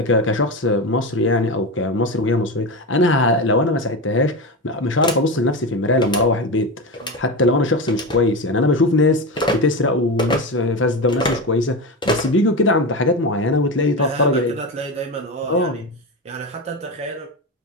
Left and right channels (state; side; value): normal; both; correlation 0.20